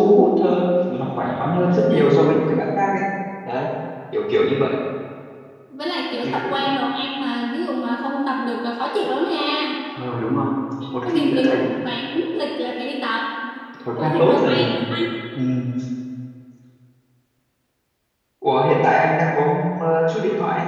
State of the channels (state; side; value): identical; both; correlation 1.00